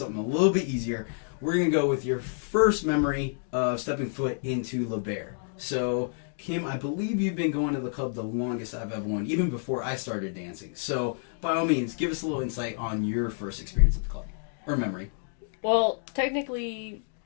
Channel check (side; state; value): right; silent; digital silence